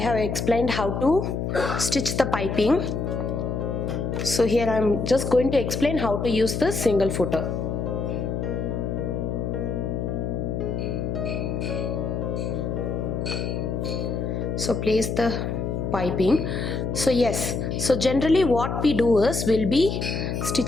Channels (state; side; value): noise; left; hum, 2 dB below the sound